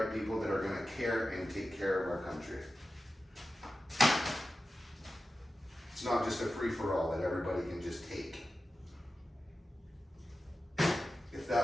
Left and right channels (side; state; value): both; normal; correlation 0.93